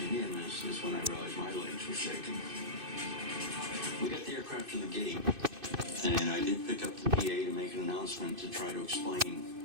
in is when I realized my legs were shaking. We got the aircraft to the gate, and I did pick up the PA to make an announcement to try to explain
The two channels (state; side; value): late; left; 2.6 ms